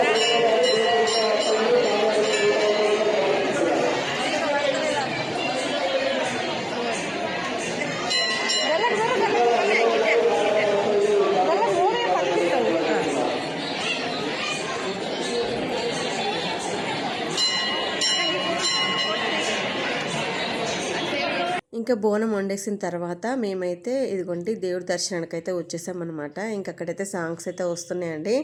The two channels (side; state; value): both; identical; correlation 1.00